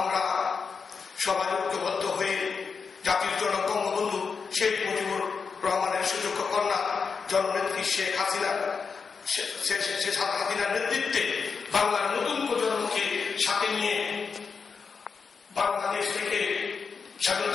সবাই ঐক্যবদ্ধ হয়ে জাতির জনক বঙ্গবন্ধু শেখ মুজিবুর রহমানের সুযোগ্য কন্যা জননেত্রী শেখ হাসিনার নেতৃত্বে বাংলার নতুন প্রজন্মকে সাথে নিয়ে বাংলাদেশ থেকে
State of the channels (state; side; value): quieter; right; 5.5 dB